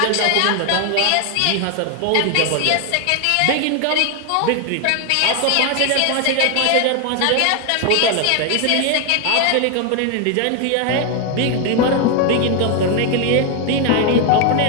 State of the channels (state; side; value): different; both; correlation 0.01